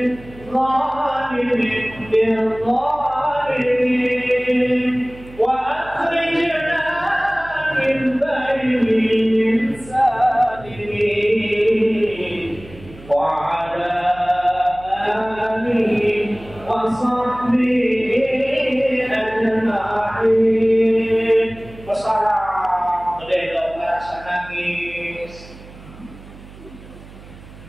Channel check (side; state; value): right; noise; hum, 19 dB below the sound